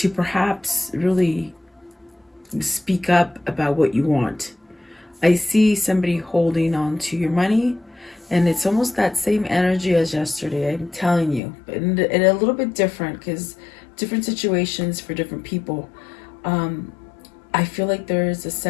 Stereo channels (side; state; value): right; drops out; at 11.4 s